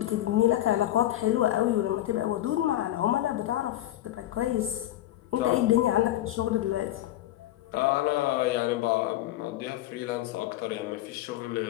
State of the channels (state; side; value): quieter; right; 14.2 dB